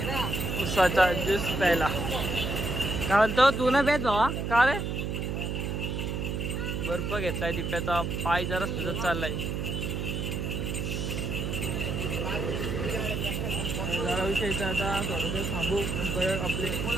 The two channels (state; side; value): noise; right; hum, 2 dB below the sound